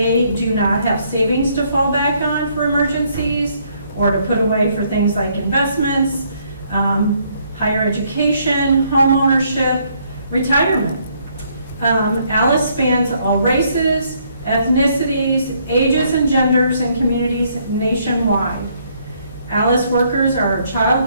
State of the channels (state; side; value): inverted; both; correlation -0.69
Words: do not have savings to fall back on for emergencies or to put away for things like investments, higher education, home ownership, retirement. ALICE spans all races, ethnicities, ages, and genders and communities nationwide. ALICE workers are child